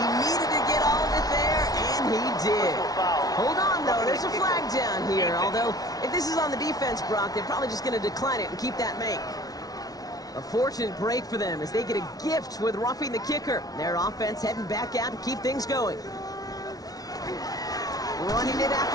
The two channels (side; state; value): right; late; 0.18 ms